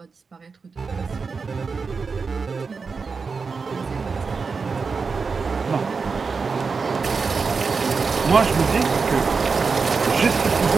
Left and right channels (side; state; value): left; quieter; 4.9 dB